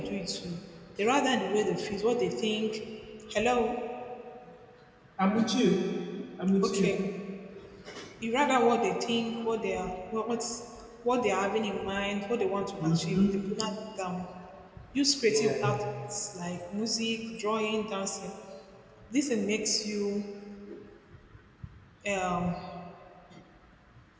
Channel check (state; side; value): identical; both; correlation 1.00